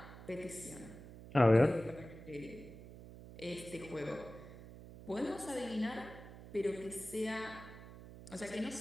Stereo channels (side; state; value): right; noise; hum, 15 dB below the sound